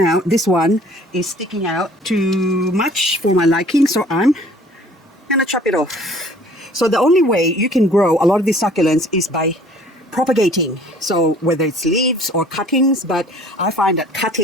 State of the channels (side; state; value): both; normal; correlation 0.53